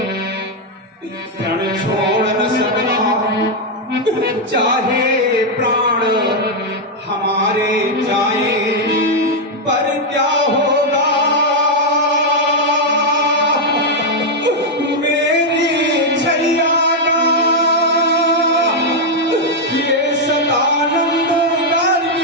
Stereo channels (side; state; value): both; normal; correlation 0.00